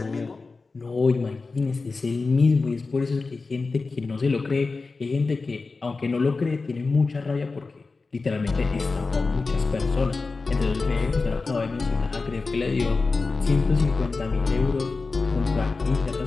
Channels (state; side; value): quieter; right; 4.0 dB